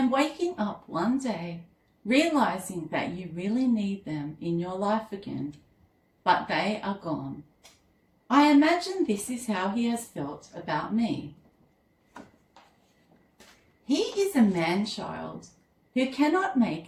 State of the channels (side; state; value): both; identical; correlation 1.00